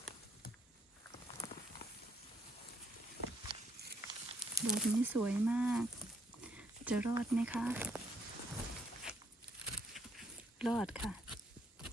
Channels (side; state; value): both; normal; correlation 0.72